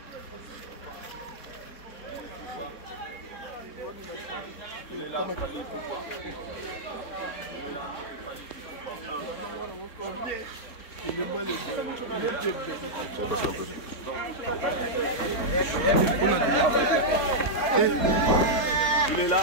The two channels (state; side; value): late; right; 4.0 ms